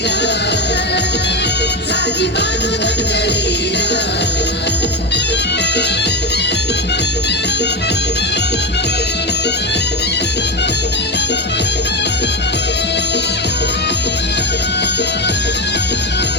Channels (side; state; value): both; normal; correlation 0.17